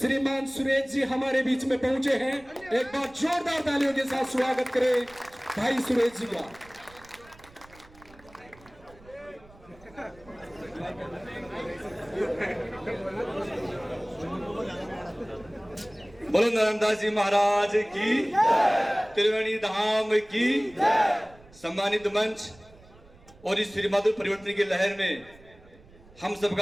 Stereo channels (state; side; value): noise; right; rumble, 25 dB below the sound